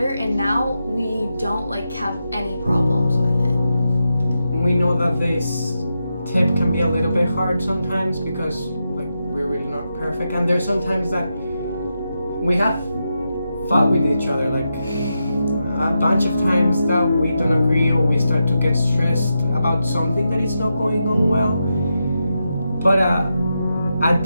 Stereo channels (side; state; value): both; inverted; correlation -0.87